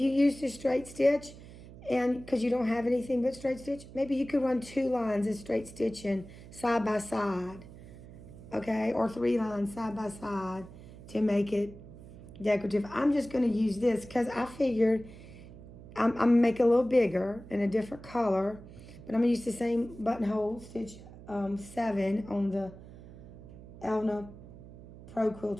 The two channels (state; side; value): noise; right; hum, 17 dB below the sound